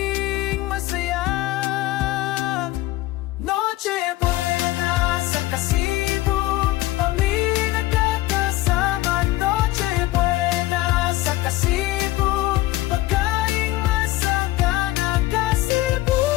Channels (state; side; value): quieter; right; 17.4 dB